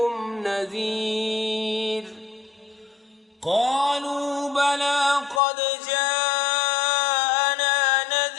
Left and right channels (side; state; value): right; drops out; at 5.4 s